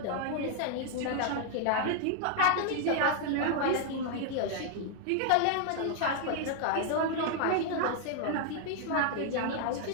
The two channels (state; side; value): different; both; correlation 0.00